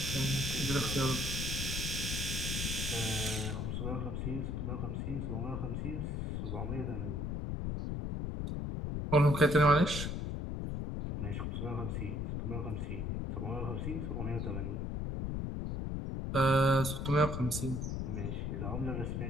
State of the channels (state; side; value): noise; left; rumble, 2 dB below the sound